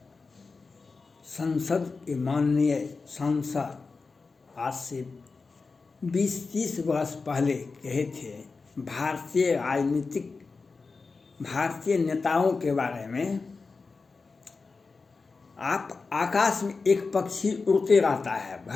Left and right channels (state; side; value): quieter; right; 4.3 dB